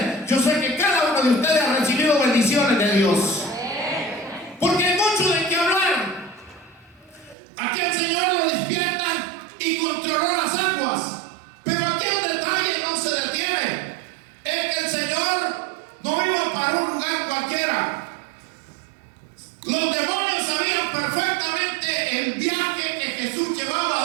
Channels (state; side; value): drops out; left; at 7.4 s